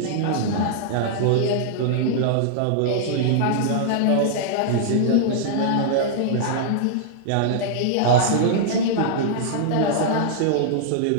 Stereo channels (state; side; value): different; both; correlation -0.01